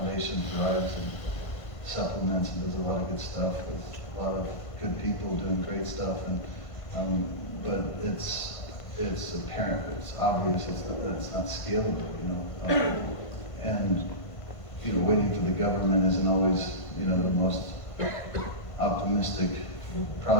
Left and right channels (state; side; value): late; right; 1.5 ms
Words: thrives and supplements and does a lot of good stuff with a lot of good people doing great stuff, but it's apparent, it's obvious, it's not scalable, and waiting for the government isn't always the most optimistic